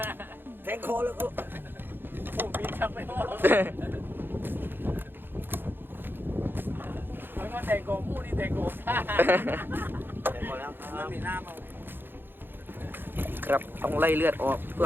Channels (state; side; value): late; left; 0.099 ms